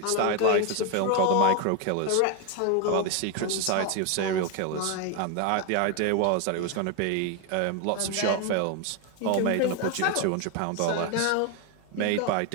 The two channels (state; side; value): different; both; correlation 0.01